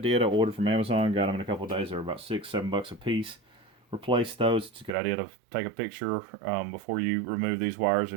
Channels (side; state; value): left; drops out; at 4.9 s